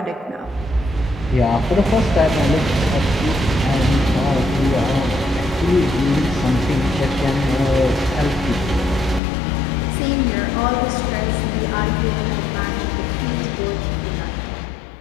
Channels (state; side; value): drops out; right; at 9.2 s